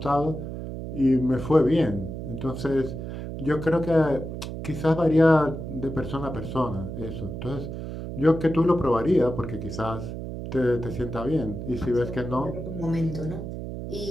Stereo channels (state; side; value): noise; right; hum, 7 dB below the sound